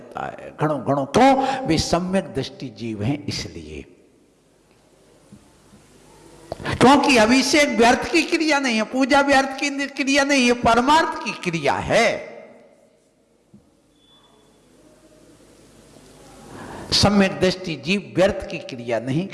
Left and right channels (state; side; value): identical; both; correlation 1.00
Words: है, घड़ों घड़ों। क्यों? वे सम्यक दृष्टि जीव हैं इसलिए। क्योंकि अभिषेक व्यर्थ की क्रिया नहीं है, पूजा व्यर्थ की क्रिया नहीं है, परमार्थ की क्रिया है। सम्यक दृष्टि जीव व्यर्थ की क्रिया नहीं